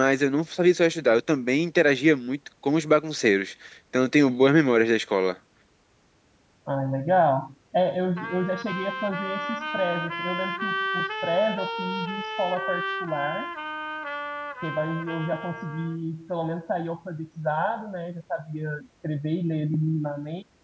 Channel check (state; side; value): identical; both; correlation 1.00